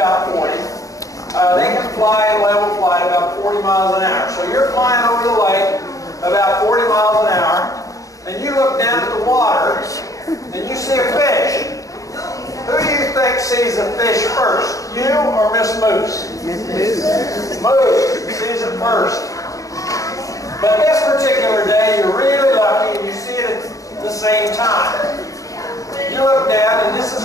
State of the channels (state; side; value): late; right; 0.16 ms